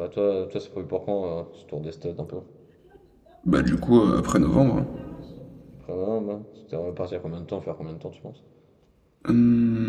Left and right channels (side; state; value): both; identical; correlation 1.00